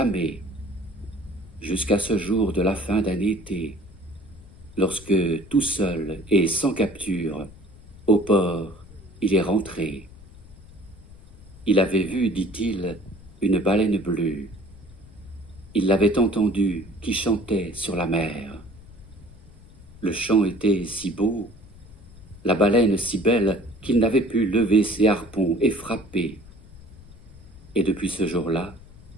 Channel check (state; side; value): noise; left; rumble, 21 dB below the sound